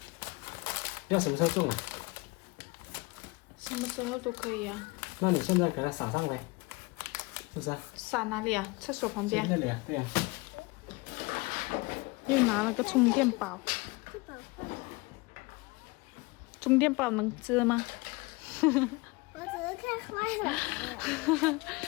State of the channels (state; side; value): quieter; right; 24.9 dB